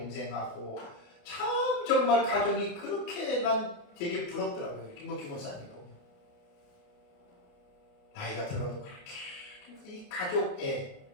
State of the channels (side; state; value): right; late; 28 ms